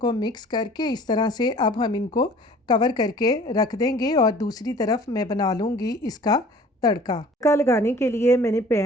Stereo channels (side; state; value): both; normal; correlation 0.48